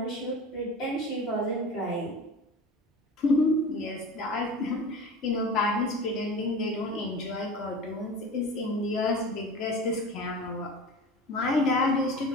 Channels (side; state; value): both; normal; correlation 0.35